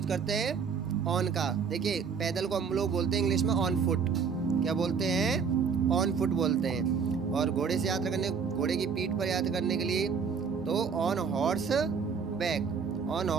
करते हैं, ऑन का। देखिए, पैदल को हम लोग बोलते हैं इंग्लिश में ऑन फुट। क्या बोलते हैं? ऑन फुट बोलते हैं। और घोड़े से यात्रा करने, घोड़े की पीठ पर यात्रा करने के लिए तो on horse back, on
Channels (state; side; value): quieter; left; 6.0 dB